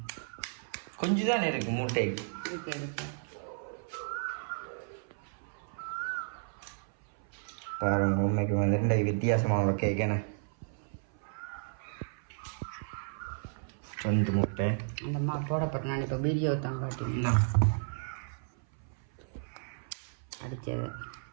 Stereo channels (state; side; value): silent; left; 56 dB below the other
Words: கொஞ்சம் தானே இருக்கு முட்டை பாருங்க உண்மைக்கு வந்து வித்தியாசமான கேட்கண்ணே 2 முட்டை அந்த அம்மா போடப்பட்ட நான் இப்போ வீடியோ தான் காட்டினேன் அடித்தது